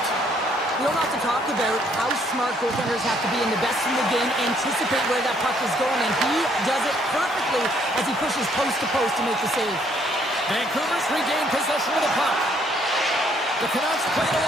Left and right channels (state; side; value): normal; both; correlation 0.67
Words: We don't have to talk about how smart goaltenders have to be, and the best in the game anticipate where that puck is going, and he does it perfectly as he pushes post to post to make the save. Vancouver's regained possession of the puck. The Canucks played